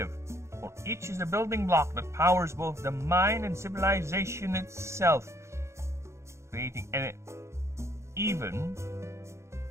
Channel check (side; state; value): left; late; 0.14 ms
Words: for each is a building block that powers both the mind and civilization itself, creating even